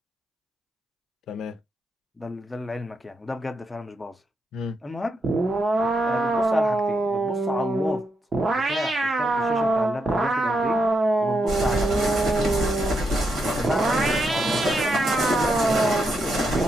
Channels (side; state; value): both; normal; correlation 0.82